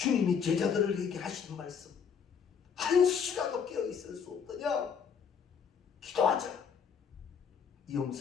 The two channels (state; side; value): quieter; right; 6.8 dB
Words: 제자들에게 하시는 말씀, 한시라도 깨어있을 수 없더냐? 기도하자. 이